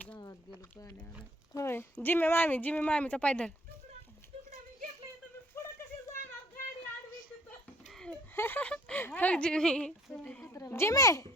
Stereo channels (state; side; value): normal; both; correlation 0.59